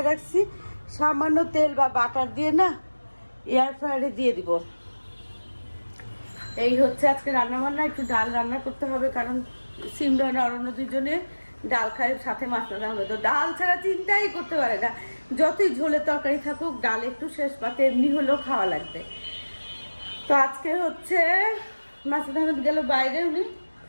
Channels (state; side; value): inverted; both; correlation -1.00